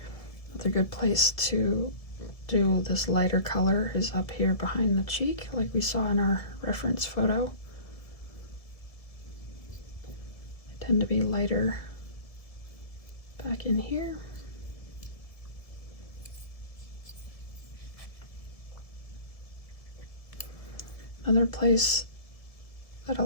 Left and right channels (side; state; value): right; late; 1.7 ms